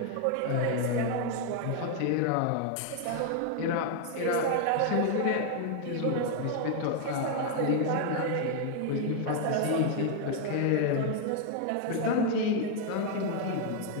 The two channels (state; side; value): different; both; correlation 0.00